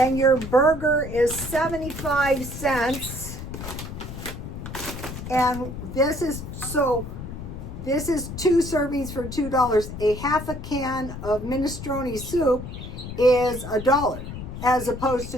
your burger is 75 cents, and this is 2 servings for $2. A half a can of minestrone soup is $1, as opposed to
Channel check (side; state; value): left; noise; rumble, 9 dB below the sound